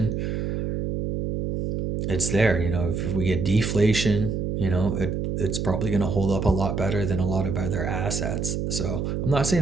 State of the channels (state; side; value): noise; right; hum, 2 dB below the sound